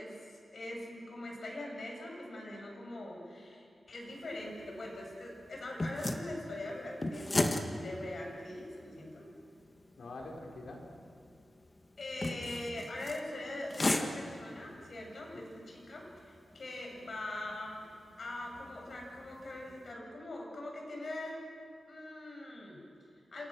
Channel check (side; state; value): both; normal; correlation 0.95